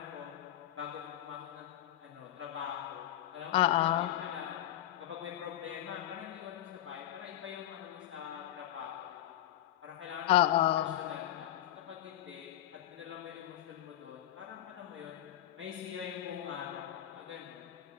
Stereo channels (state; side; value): quieter; right; 12.3 dB